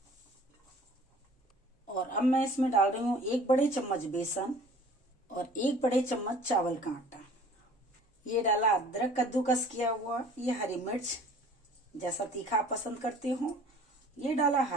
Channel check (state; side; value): normal; both; correlation 0.49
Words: और अब मैं इसमें डाल रही हूँ 1 बड़े चम्मच बेसन और 1 बड़े चम्मच चावल का आटा। ये डाला अदरक कद्दूकस किया हुआ, ये हरी मिर्च जैसा तीखा आप पसंद करते हो, ये डाला